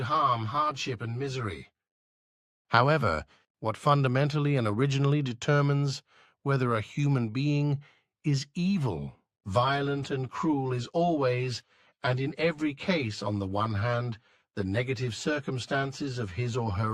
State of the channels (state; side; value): identical; both; correlation 1.00